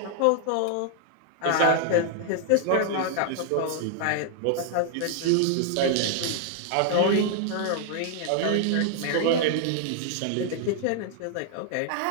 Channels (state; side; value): different; both; correlation 0.00